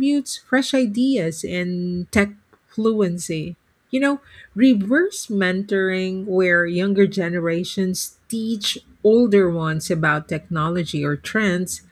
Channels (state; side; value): identical; both; correlation 1.00